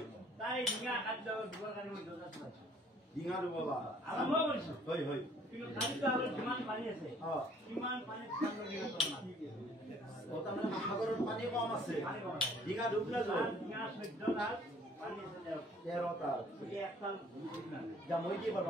তাই ডিঙা খাদ্য দুৱাৰ কাৰণে মই দৰজা পাইছো ডিঙা দুবলা আৰম্ভ কৰিছো হয় হয় কিন্তু খাদ্য আৰু কিমান পানী আছে কিমান পানী তাৰমানে সাগৰত পানী কম আছে ডিঙা ডুবলে যায় ডিঙা 14 ডাল 13টা যা মই কি কৰিব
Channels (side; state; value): both; normal; correlation 0.58